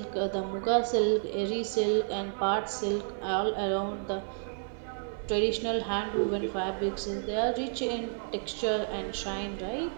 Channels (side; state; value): left; silent; digital silence